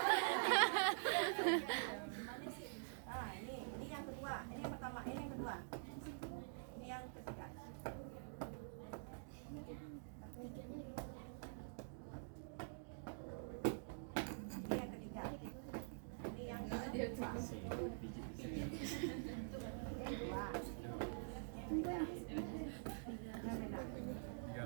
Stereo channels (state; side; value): silent; left; digital silence